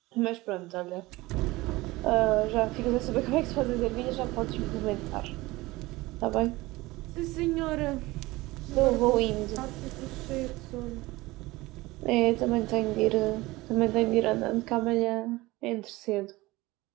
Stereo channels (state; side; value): quieter; left; 20.3 dB